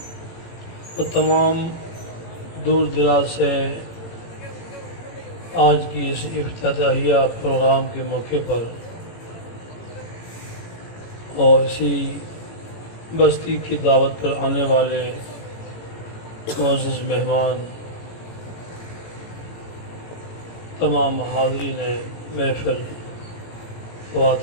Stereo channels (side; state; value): right; late; 18 ms